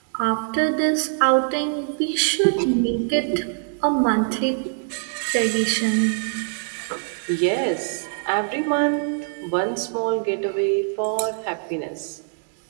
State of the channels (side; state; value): left; silent; digital silence